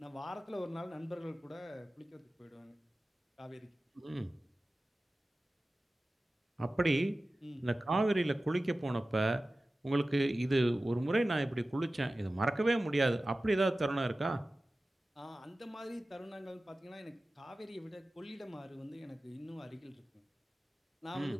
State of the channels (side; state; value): both; normal; correlation 0.96